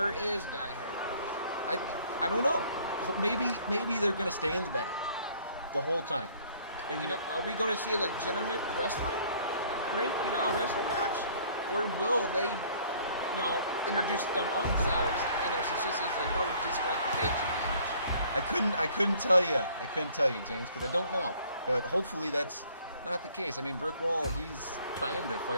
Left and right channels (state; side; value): inverted; both; correlation -0.57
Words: is Die Hard? I don't know. Maybe they're going to stay in the back the whole time. And you know, are we going to see a legitimate wrestling ring, you know, a wrestling match? Or will they, you know, introduce them own selves and since this is a no disqualification match? I couldn't tell you. I couldn't tell you, James, because I don't know. But hopefully that's not the case. I mean, Brick Wall, he's trying to